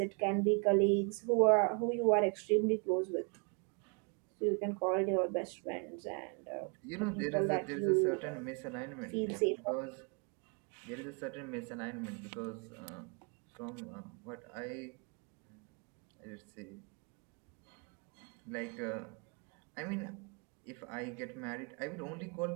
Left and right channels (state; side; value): quieter; left; 36.6 dB